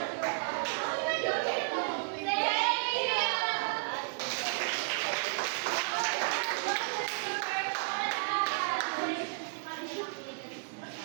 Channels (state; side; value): silent; left; digital silence